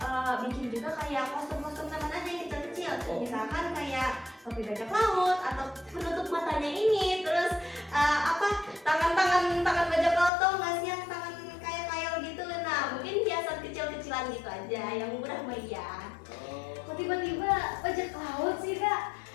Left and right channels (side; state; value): right; drops out; at 10.3 s